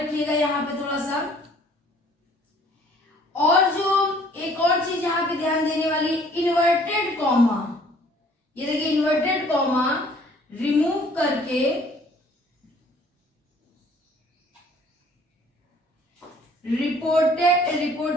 यहाँ पे थोड़ा सा। और जो एक और चीज यहाँ पे ध्यान देने वाली, इन्वर्टेड कॉमा। ये देखिए, इन्वर्टेड कॉमा रिमूव करके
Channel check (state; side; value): normal; both; correlation 0.57